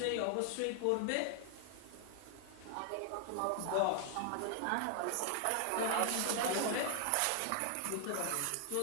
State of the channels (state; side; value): different; both; correlation 0.00